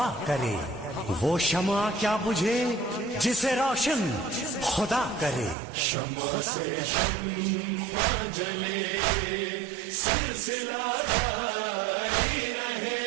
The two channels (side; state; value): left; drops out; at 5.6 s